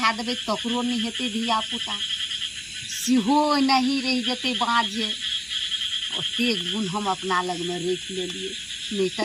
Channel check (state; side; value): identical; both; correlation 1.00